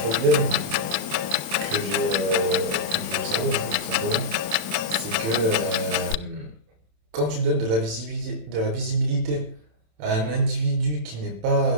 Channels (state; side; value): late; left; 27 ms